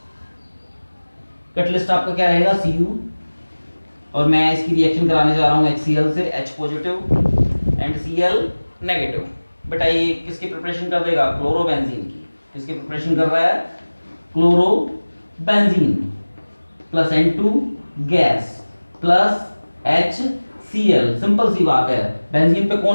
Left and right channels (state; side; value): inverted; both; correlation -1.00